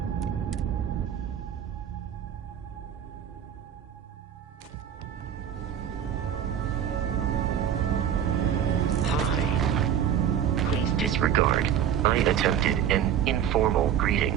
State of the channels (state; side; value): quieter; left; 9.4 dB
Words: Hi. Please disregard. I attempted an informal greeting,